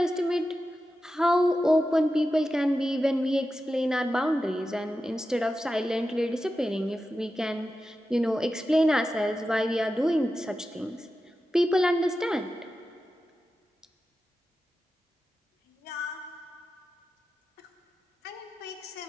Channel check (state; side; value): normal; both; correlation 0.92